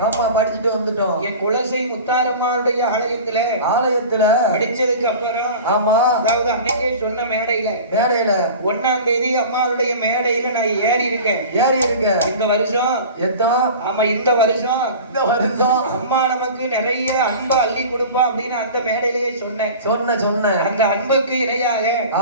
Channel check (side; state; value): both; inverted; correlation -0.37